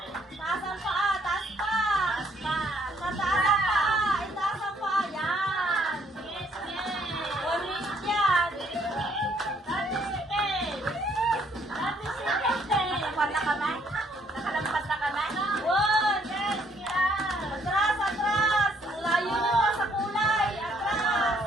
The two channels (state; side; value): normal; both; correlation 0.66